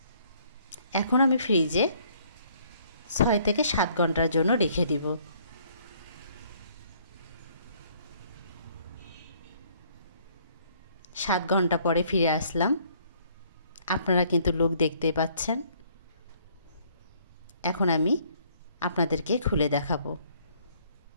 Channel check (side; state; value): both; inverted; correlation -0.62